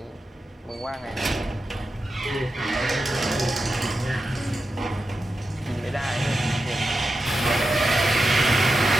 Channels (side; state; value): both; normal; correlation 0.90